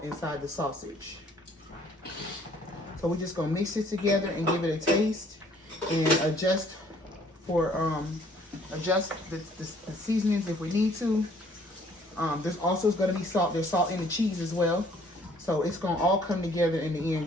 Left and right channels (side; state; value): both; normal; correlation 0.60